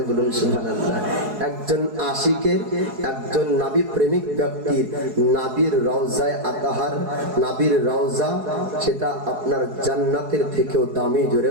বলুন সুবহানাল্লাহ। একজন আশিকের, একজন নাবী প্রেমিক ব্যক্তির নাবির রওজায় আতাহার, নাবির রওজা, সেটা আপনার জান্নাতের থেকেও দামি। জোরে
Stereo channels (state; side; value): late; left; 4.7 ms